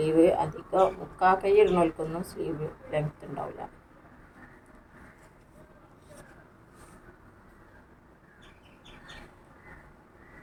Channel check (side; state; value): both; identical; correlation 1.00